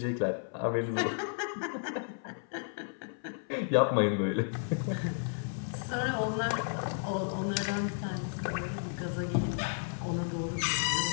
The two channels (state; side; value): silent; right; 55 dB below the other